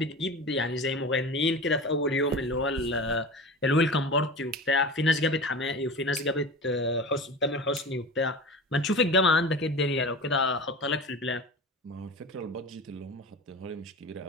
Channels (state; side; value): normal; both; correlation 0.32